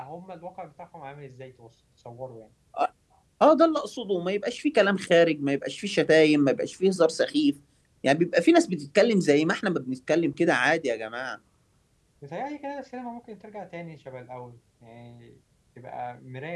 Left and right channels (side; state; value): both; identical; correlation 1.00